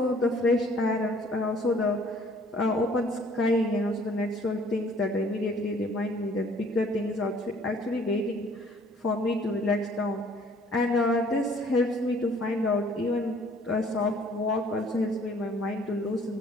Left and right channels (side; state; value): both; normal; correlation 0.57